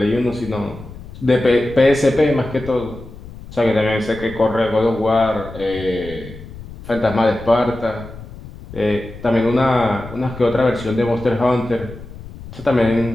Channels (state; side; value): noise; left; rumble, 15 dB below the sound